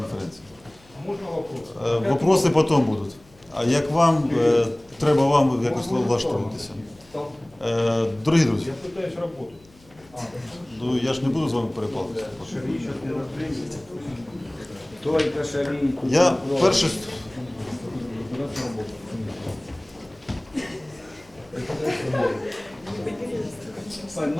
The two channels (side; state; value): left; noise; hum, 29 dB below the sound